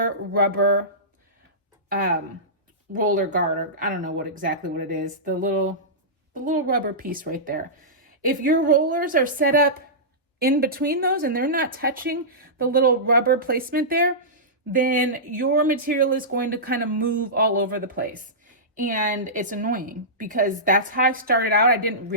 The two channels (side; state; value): both; normal; correlation -0.17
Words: rubber roller guard, or I don't know exactly what it is, the little rubber piece right there. If your rollers are set up in between those and they're not touching the little rubber placement there, then your material is going to kind of move all over the place. And it's annoying because that's how I started out. I didn't